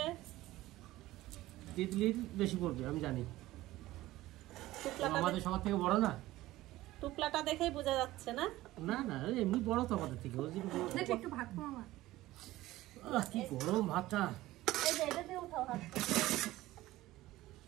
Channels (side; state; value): left; quieter; 16.8 dB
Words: তিতলির বেশি পড়বে আমি জানি, টুকলাটা আমাদের সবার থেকে বড় না। টুকলাটা দেখেই বোঝা যাচ্ছে না? না না, এমনি বড় তো আমাদের থেকে। ওই যে বড়। দেখ একটু ভাত খাও আমার। কি গরম ভাতটা। এই যে এটা দিয়ে উঠাও হাত।